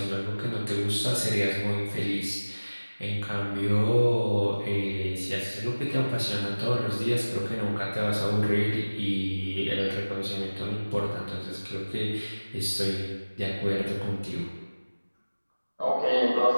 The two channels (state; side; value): inverted; both; correlation -1.00